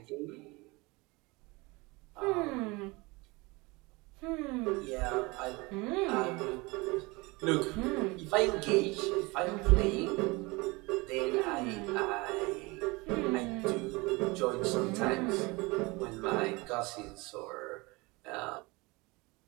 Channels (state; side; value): quieter; left; 24.7 dB